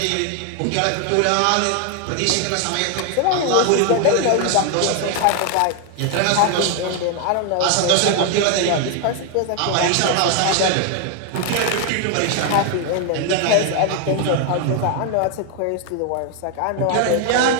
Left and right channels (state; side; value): different; both; correlation 0.01